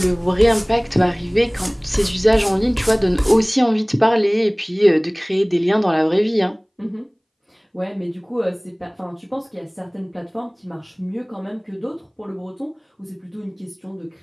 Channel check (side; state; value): both; identical; correlation 1.00